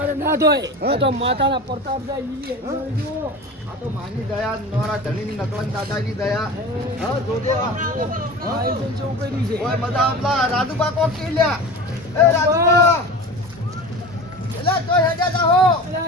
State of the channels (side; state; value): both; normal; correlation 0.33